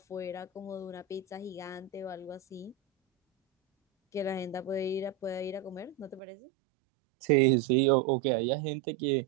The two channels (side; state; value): left; drops out; at 6.2 s